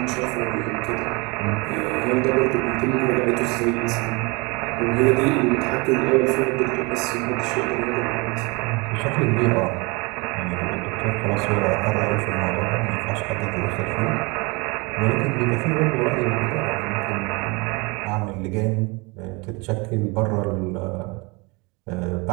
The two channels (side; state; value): left; quieter; 27.7 dB